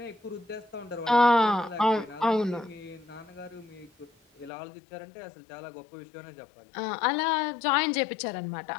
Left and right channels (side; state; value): right; drops out; at 4.5 s